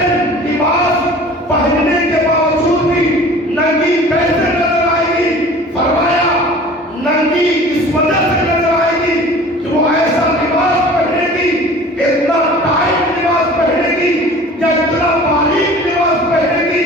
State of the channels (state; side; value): normal; both; correlation 0.44